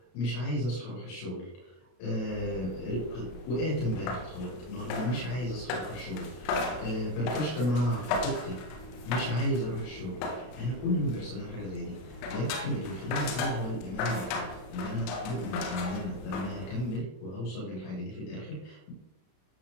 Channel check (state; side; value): late; right; 33 ms